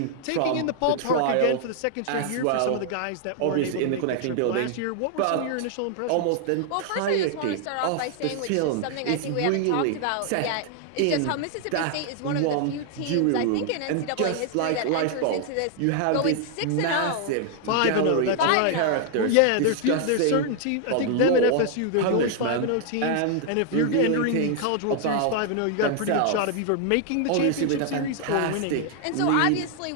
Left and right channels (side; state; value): both; different; correlation 0.00